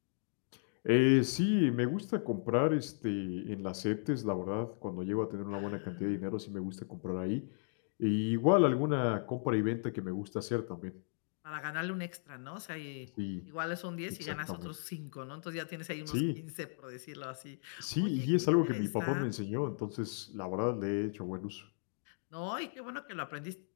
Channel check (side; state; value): right; silent; digital silence